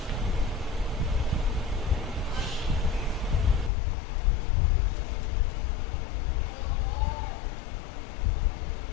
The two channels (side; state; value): right; drops out; at 3.7 s